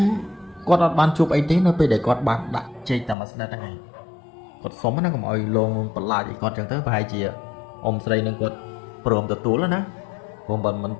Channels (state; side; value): drops out; right; at 3.2 s